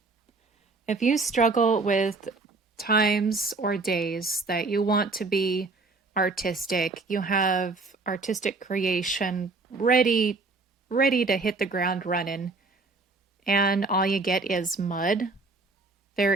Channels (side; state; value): left; quieter; 3.7 dB